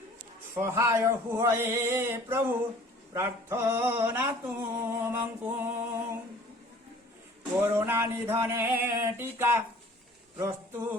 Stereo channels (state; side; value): normal; both; correlation 0.50